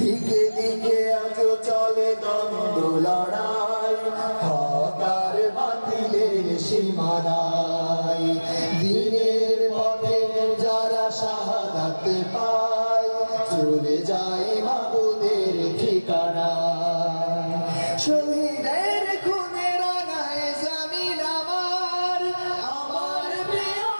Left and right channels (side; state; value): both; inverted; correlation -1.00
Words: দিকে আজ চলে দ্বন্দ্ব লড়াই, হক আর বাতিলের সীমানায়। দিনের পথে যারা শাহাদাত পায়, চলে যায় মাবুদের ঠিকানা। শহীদের খুনে রাঙায় জমিন আমার, আমার প্রিয়